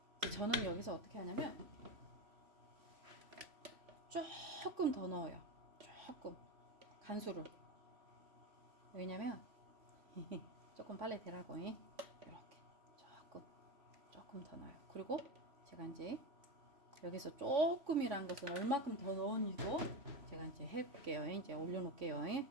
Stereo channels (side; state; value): left; late; 3.0 ms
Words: 저는 여기서 어떻게 하냐면 조금 더 넣어요. 조금 간수를. 왜냐면 조금 빨리 되라고. 이렇게 조금 더 넣어요. 그리고 제가 이제 여기서 조금이란 것은 얼마큼 더 넣었는지도 제가 이제 해볼게요. 이제 올려놓을게요.